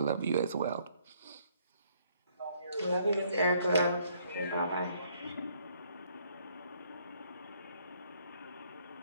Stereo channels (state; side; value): inverted; both; correlation -0.66